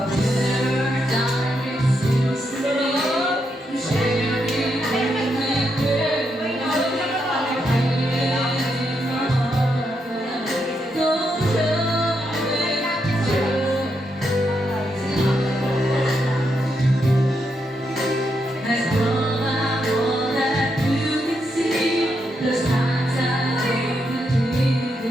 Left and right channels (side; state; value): both; normal; correlation 0.81